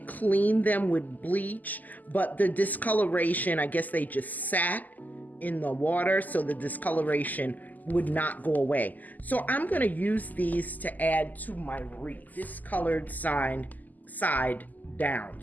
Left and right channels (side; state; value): right; late; 0.082 ms